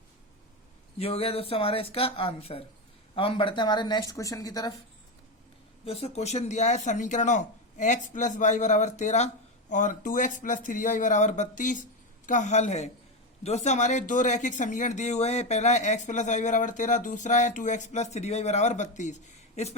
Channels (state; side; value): normal; both; correlation 0.13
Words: ये हो गया दोस्तों हमारा इसका आंसर। अब हम बढ़ते हैं हमारे नेक्स्ट क्वेश्चन की तरफ। दोस्तों क्वेश्चन दिया है समीकरणों x + y = 13 और 2x + 3y = 32 का हल है। दोस्तों हमारे दो रैखिक समीकरण दिए हुए हैं, पहला है x + y = 13, दूसरा है 2x + 3y = 32। इस